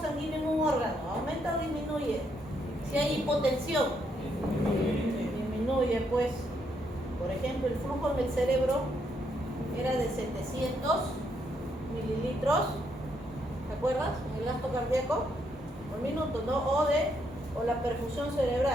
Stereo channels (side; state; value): both; normal; correlation 0.75